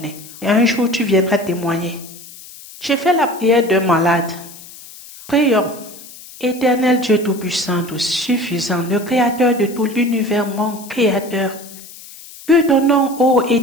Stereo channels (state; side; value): noise; left; hiss, 18 dB below the sound